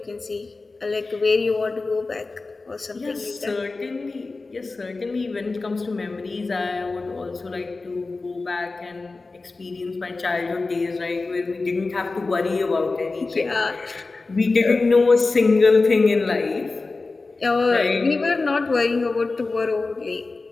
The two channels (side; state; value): right; quieter; 3.7 dB